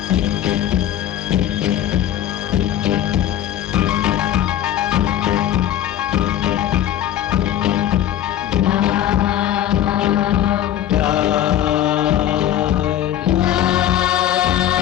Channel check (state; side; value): quieter; right; 11.6 dB